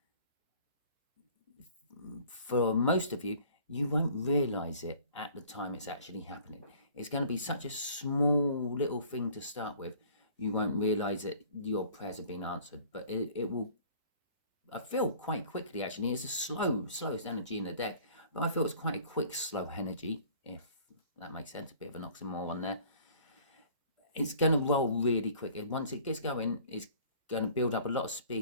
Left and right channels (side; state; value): both; inverted; correlation -0.51